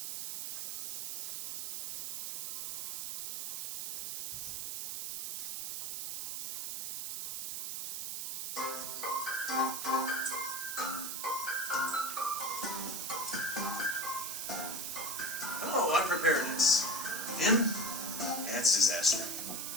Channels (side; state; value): right; noise; hiss, 3 dB below the sound